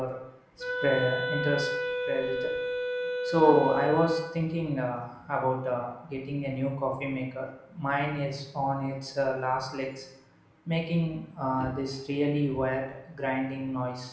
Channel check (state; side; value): identical; both; correlation 1.00